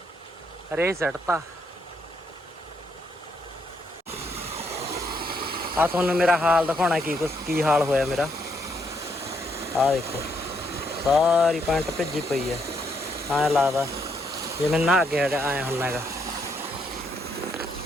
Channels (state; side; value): normal; both; correlation 0.75